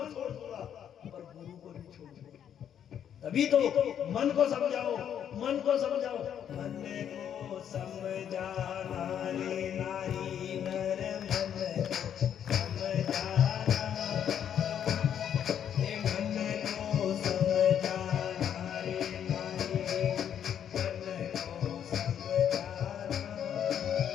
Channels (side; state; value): right; quieter; 9.2 dB